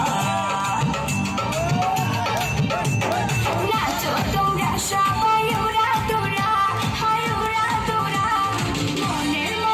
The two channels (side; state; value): both; identical; correlation 1.00